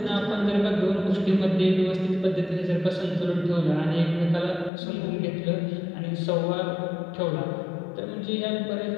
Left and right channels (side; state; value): right; drops out; at 4.7 s